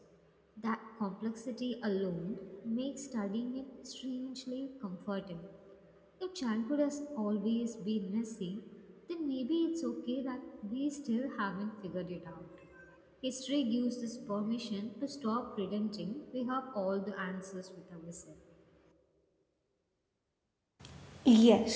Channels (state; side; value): identical; both; correlation 1.00